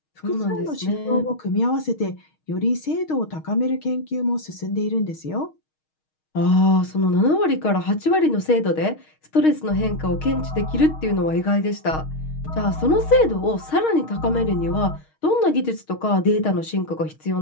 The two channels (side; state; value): right; late; 6.4 ms